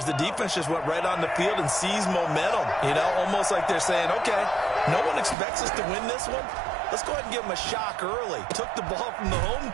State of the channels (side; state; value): left; drops out; at 5.4 s